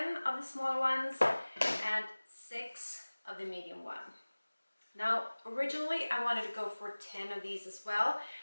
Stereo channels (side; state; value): both; inverted; correlation -1.00